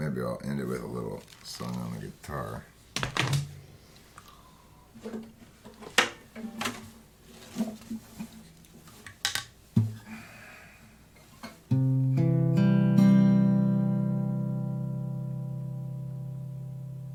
I'll end it with a little song on the guitar.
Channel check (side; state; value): both; identical; correlation 1.00